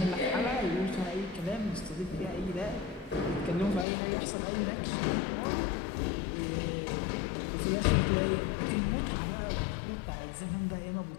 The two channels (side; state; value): right; drops out; at 3.9 s